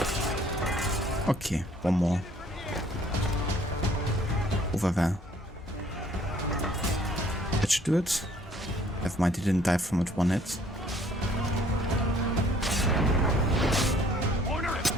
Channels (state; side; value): normal; both; correlation 0.59